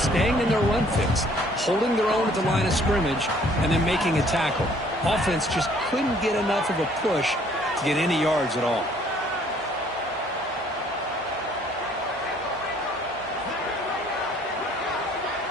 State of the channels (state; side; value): normal; both; correlation 0.60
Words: staying in their run fix, holding their own at the line of scrimmage, and then making a tackle. Offense just couldn't get enough of a push to get any yards at all.